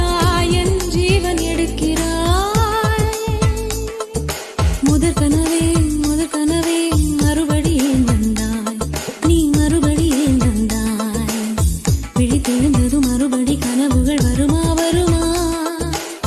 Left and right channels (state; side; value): identical; both; correlation 1.00